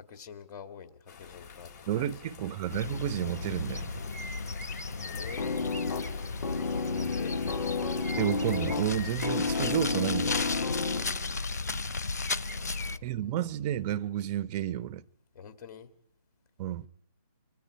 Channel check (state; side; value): inverted; both; correlation -0.45